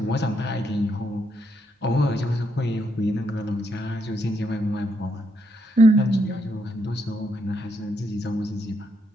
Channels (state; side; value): normal; both; correlation 0.77